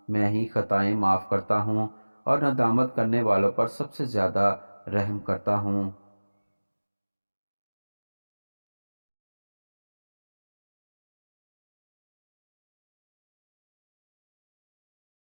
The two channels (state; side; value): inverted; both; correlation -1.00